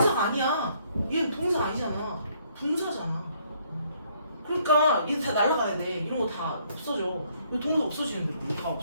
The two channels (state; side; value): inverted; both; correlation -0.67